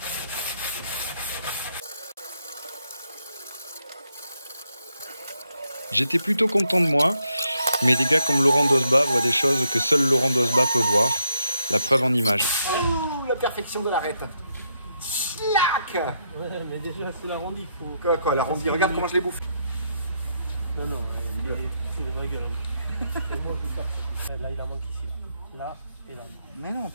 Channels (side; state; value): both; inverted; correlation -0.78